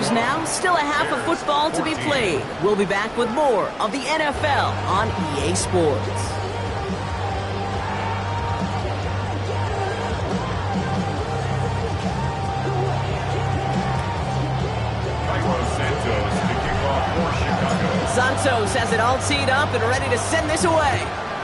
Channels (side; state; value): both; identical; correlation 1.00